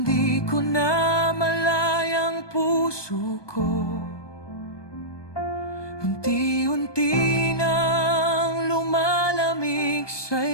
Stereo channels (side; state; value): right; late; 1.2 ms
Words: ko na malayang puso ko, unti-unti nang lumalamig